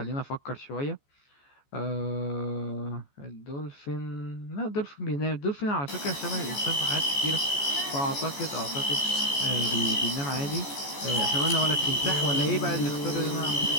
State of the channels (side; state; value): right; late; 14 ms